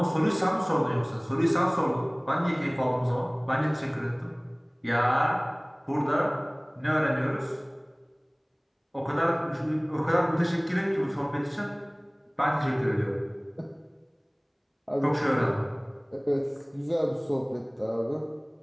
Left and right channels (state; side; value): identical; both; correlation 1.00